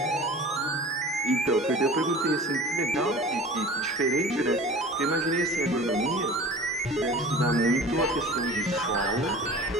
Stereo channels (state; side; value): normal; both; correlation 0.40